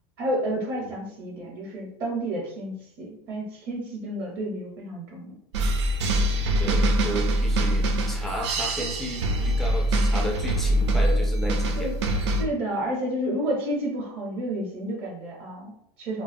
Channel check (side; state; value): both; normal; correlation 0.61